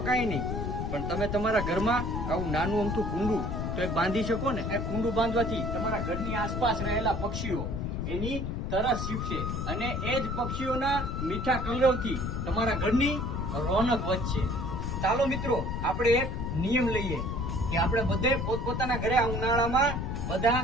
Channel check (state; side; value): noise; left; rumble, 2 dB below the sound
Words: કઈ નહીં, પણ તમે તમારા ઘરમાં આવું નાનું અમથું કુંડું તો એક બાંધી શકો ને. એ કુંડું બાંધવાથી તમારા ઘરની આસપાસ રહેલા પક્ષીઓ એની તરસ છીપશે અને એ જ પક્ષીઓના મીઠા કલરવથી તમારા ઘરની રોનક વધશે. ચાલો મિત્રો, આપણે એક નિયમ લઈએ કે આપણે બધે પોતપોતાના ઘરે આ ઉનાળામાં બધા